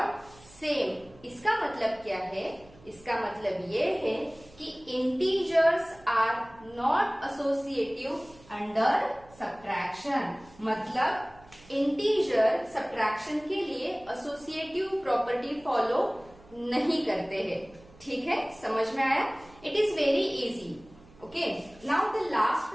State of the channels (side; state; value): right; noise; hum, 25 dB below the sound